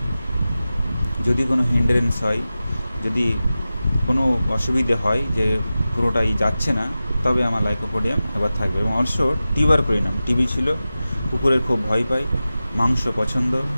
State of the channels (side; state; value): both; inverted; correlation -0.95